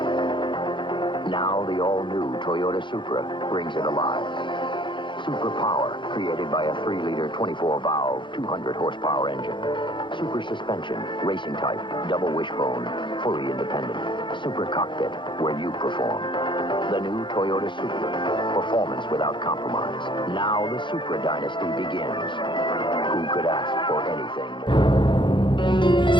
Now the all-new Toyota Supra brings it alive. Super power, created by a 3-liter 24-valve, 200-horsepower engine. Super suspension, racing type, double wishbone, fully independent. Super cockpit, where you perform. The new Toyota Supra. Performance without compromise. Now the Supra dynasty begins. Who could ask for anything more?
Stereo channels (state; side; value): late; right; 0.23 ms